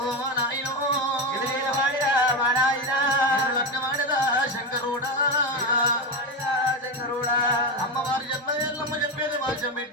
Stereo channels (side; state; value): both; normal; correlation 0.14